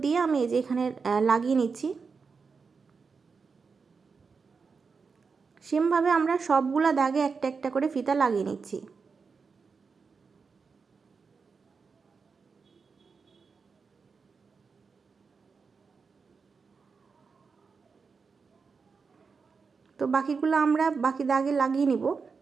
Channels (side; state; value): left; quieter; 5.1 dB